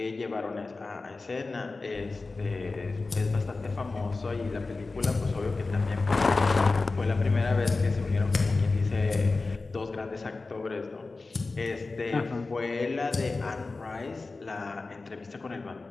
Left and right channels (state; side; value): quieter; right; 3.7 dB